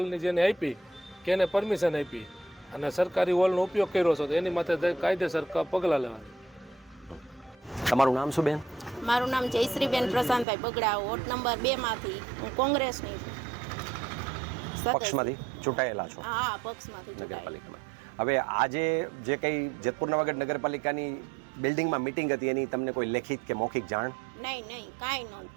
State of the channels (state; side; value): drops out; left; at 10.5 s